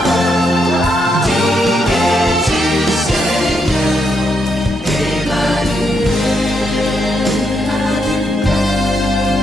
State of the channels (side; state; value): both; normal; correlation 0.79